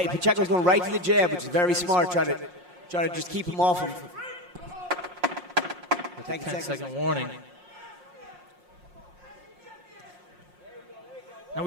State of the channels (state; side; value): late; left; 5.6 ms